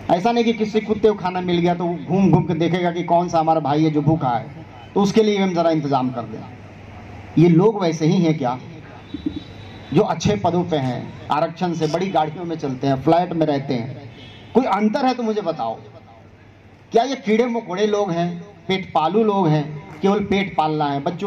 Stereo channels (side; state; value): both; identical; correlation 1.00